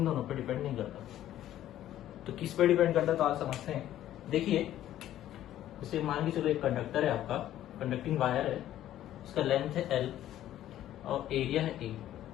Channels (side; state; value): right; quieter; 12.6 dB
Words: दोनों पर डिपेंड नहीं करता। तो किस पे डिपेंड करता है तो आज समझते हैं। देखिए जैसे मान के चलो एक कंडक्टर है आपका, कंडक्टिंग वायर है, उसका लेंथ है L और एरिया है A,